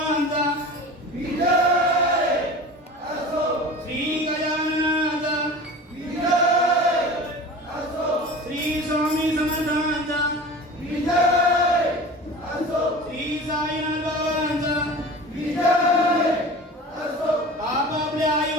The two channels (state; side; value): normal; both; correlation 0.37